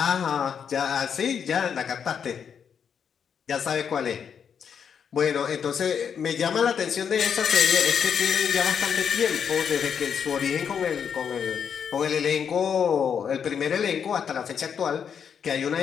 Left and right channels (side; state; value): right; quieter; 7.4 dB